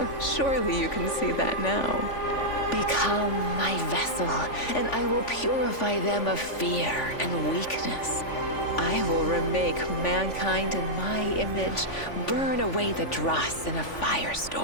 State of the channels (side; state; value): right; late; 3.5 ms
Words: Surely you can see that now. Become my vessel, and I will purify them of fear and weakness. I will remake mankind in my image, burn away the dross in a